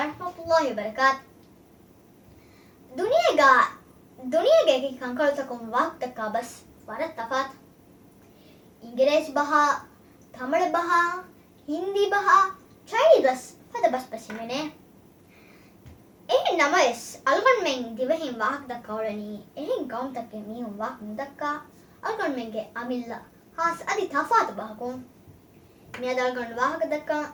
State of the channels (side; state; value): both; identical; correlation 1.00